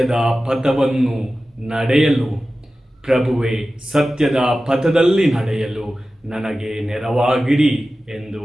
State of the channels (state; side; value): normal; both; correlation 0.95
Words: ಪಥವನ್ನು ನಡೆಯಲು, ಪ್ರಭುವೇ ಸತ್ಯದ ಪಥದಲ್ಲಿ ನಡೆಯಲು ನನಗೆ ನೆರವಾಗಿರಿ ಎಂದು